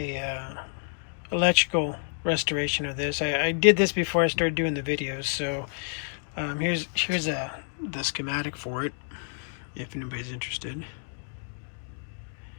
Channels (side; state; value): right; silent; 59 dB below the other